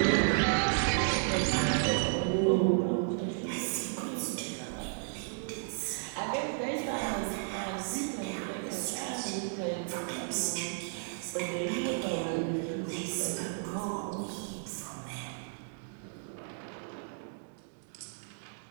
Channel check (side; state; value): left; silent; digital silence